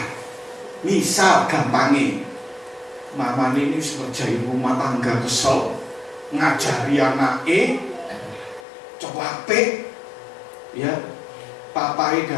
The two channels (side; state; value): right; drops out; at 8.6 s